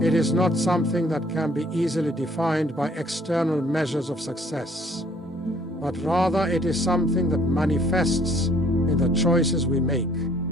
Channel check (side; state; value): both; normal; correlation 0.60